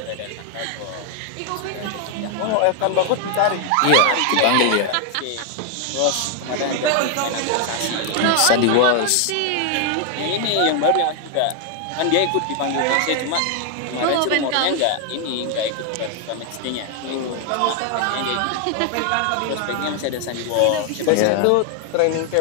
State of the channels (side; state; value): both; different; correlation 0.00